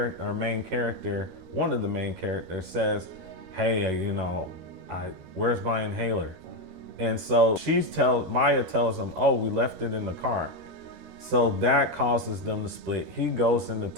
main character, one of the main characters, says, hey, where's my inhaler? And so Maya tells him, oh, we left it in the car. So that causes them to split. He goes into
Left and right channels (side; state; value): left; late; 13 ms